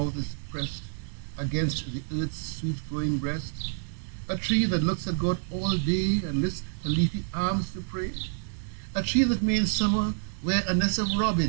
is pressed against the earth's sweet flowing breast, a tree that looks at God all day and lifts her leafy arms to pray, a tree that may in summer wear a nest of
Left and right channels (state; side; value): silent; left; digital silence